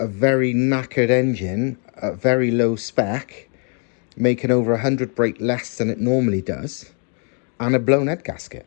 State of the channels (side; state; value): right; quieter; 37.4 dB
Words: a very knackered engine at very low spec, making over 100 brake less than it normally does, and a blown head gasket.